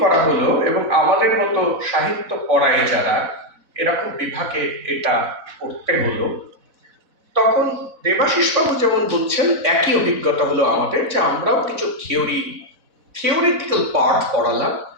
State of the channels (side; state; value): left; late; 4.0 ms